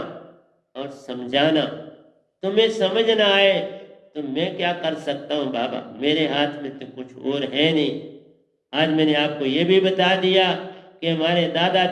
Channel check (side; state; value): both; identical; correlation 1.00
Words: और समझाना। तुम्हें समझ ना आए तो मैं क्या कर सकता हूँ बाबा, मेरे हाथ में तो कुछ और है नहीं। आज मैंने आपको ये भी बता दिया कि हमारे